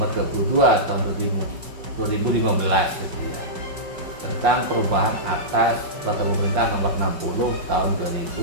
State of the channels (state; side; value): late; left; 5.2 ms